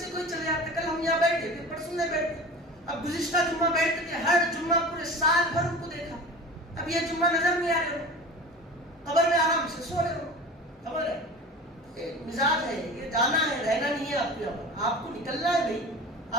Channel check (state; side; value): normal; both; correlation 0.36